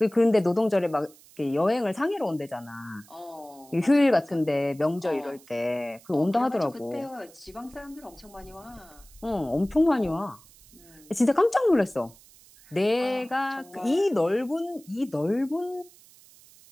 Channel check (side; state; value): right; noise; hiss, 25 dB below the sound